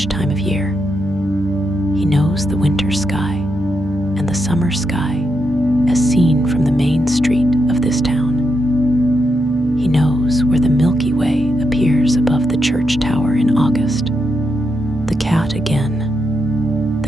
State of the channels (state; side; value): normal; both; correlation 0.83